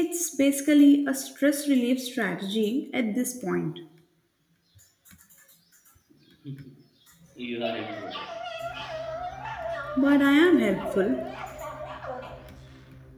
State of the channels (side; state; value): both; identical; correlation 1.00